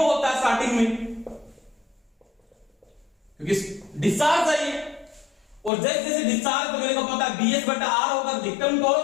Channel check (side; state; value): right; drops out; at 5.7 s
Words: होता है स्टार्टिंग में, क्योंकि डिस्चार्ज है ये। और जैसे जैसे डिस्चार्ज तो मेरे को पता है BS बटा R होगा, अधिकतम